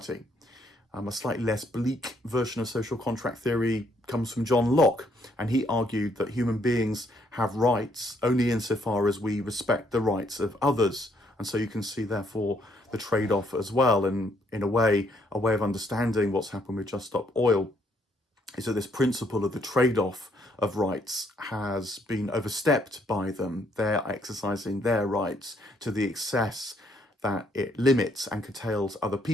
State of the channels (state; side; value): normal; both; correlation 0.70